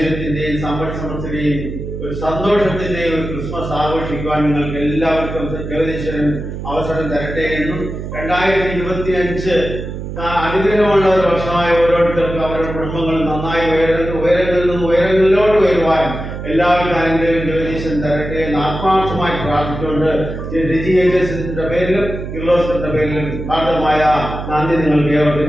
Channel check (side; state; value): right; noise; hum, 7 dB below the sound